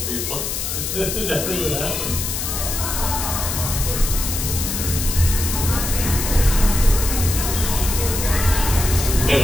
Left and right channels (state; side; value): noise; left; hiss, 3 dB below the sound